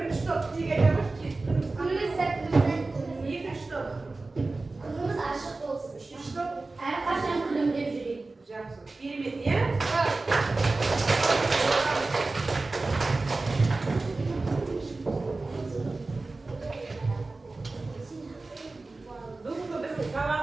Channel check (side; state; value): left; quieter; 3.4 dB